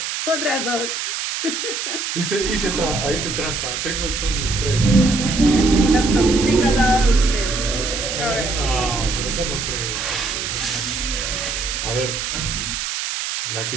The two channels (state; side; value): noise; right; hiss, 3 dB below the sound